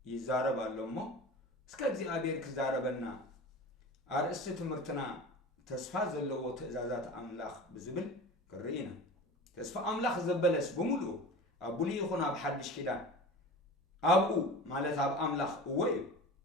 ይዛረብ ኣሎ እሞ እስከ እግዚአብሔር ክዛረበና ኣርእስቲ ትምህርትና ተስፋ ዘለዎ ትእዛዛት ኣምላኽ ብዝብል ክርኢና ተስፋ ኣምላኽ ዘበለስ ብምሉኡ ኣብ ብሉይ ይኹን ኣብ ሓድሽ ኪዳን ኣብኡ ማለት ኣብ ኣምላኽ እወ እዩ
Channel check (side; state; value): both; normal; correlation 0.35